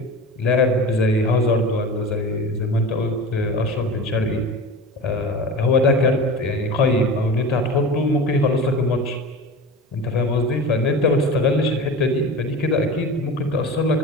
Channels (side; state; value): both; normal; correlation 0.31